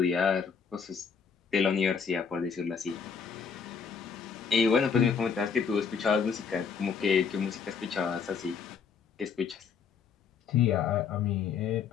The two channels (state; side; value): quieter; right; 6.2 dB